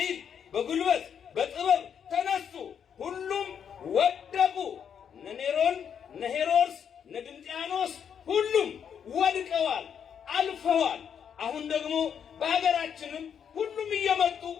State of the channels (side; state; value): right; quieter; 7.9 dB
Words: በጉልበት በጥበብ ተነሱ። ሁሉም ወደቁ። እነ ኔሮን፣ እነ ሄሮድስ፣ እነ ድንጥያኖስ ሁሉም ወድቀዋል፣ አልፈዋል። አሁን ደግሞ በሀገራችንም ሁሉም እየመጡ